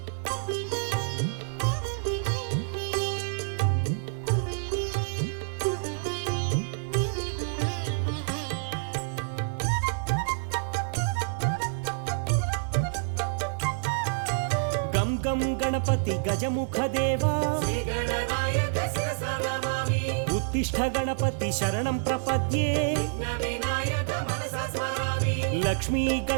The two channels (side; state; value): left; silent; 59 dB below the other